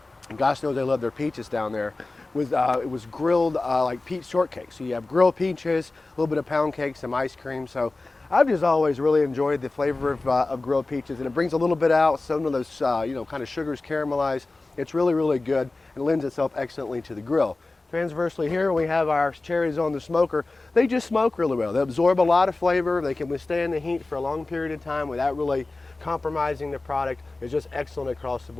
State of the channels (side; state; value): right; quieter; 3.2 dB